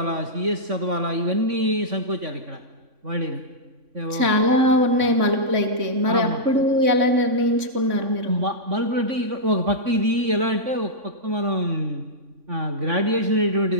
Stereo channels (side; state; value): left; late; 3.6 ms